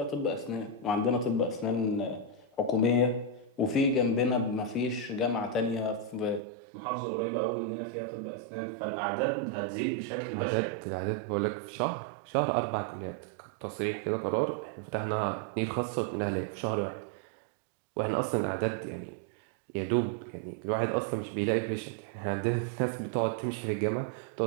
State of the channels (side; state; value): left; drops out; at 6.4 s